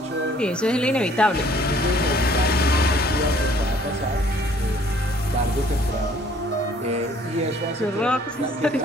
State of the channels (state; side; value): normal; both; correlation 0.58